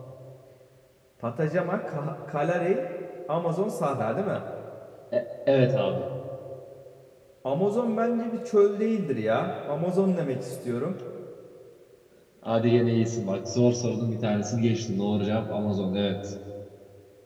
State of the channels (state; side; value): identical; both; correlation 1.00